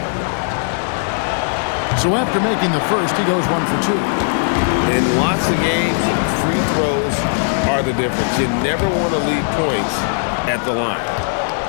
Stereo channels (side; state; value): right; silent; 55 dB below the other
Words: So after making the first, he goes 1 for 2. In lots of games, free throws are the difference. You never want to leave points at the line.